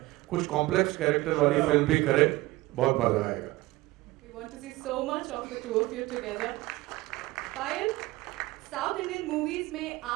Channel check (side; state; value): left; quieter; 19.8 dB